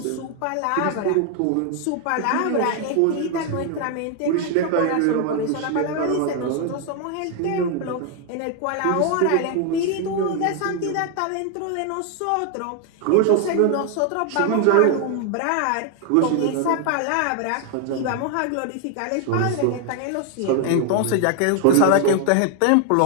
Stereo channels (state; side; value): different; both; correlation 0.00